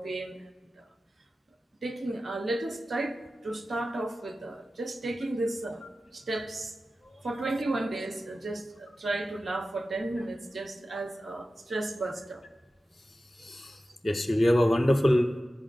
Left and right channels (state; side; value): normal; both; correlation 0.94